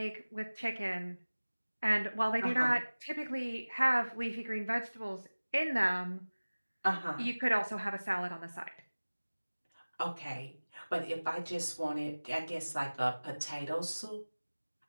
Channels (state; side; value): inverted; both; correlation -1.00